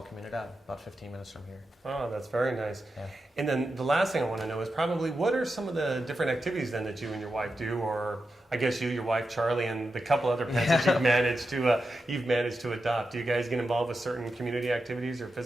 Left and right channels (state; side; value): normal; both; correlation 0.89